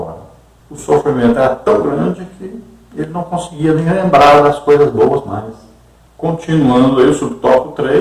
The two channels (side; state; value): both; identical; correlation 1.00